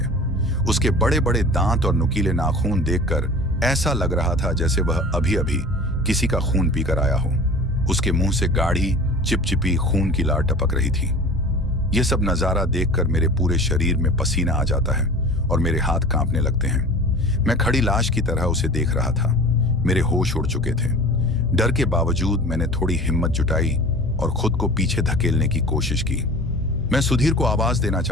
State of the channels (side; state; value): both; normal; correlation 0.40